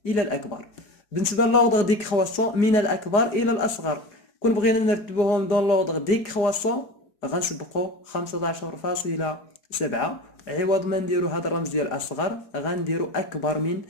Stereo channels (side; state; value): right; late; 4.7 ms